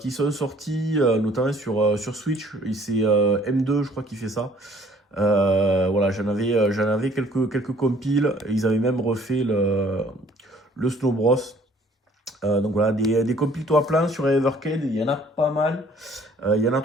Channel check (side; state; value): both; normal; correlation 0.58